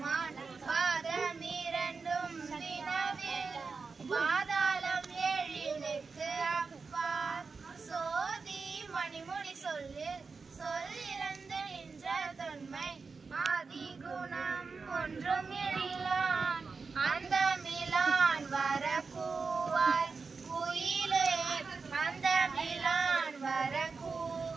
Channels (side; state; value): left; quieter; 4.7 dB